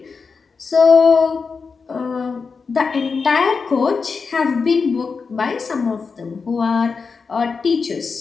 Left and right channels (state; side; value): quieter; right; 5.0 dB